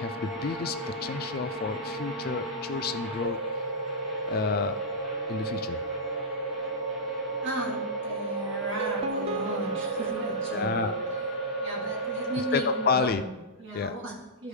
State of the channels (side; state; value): both; normal; correlation -0.12